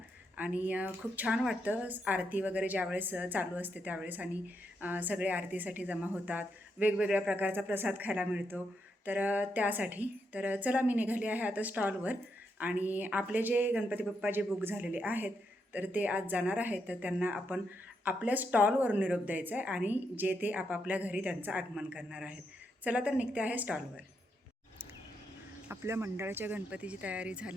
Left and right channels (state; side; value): normal; both; correlation 0.81